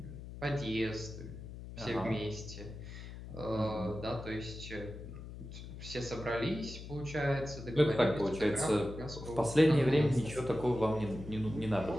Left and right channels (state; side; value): noise; left; hum, 11 dB below the sound